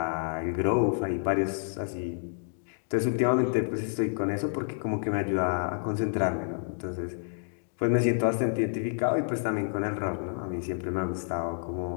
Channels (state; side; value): silent; right; digital silence